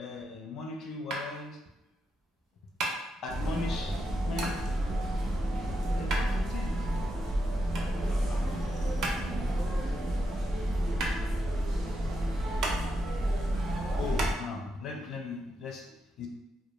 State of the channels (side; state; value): both; normal; correlation 0.84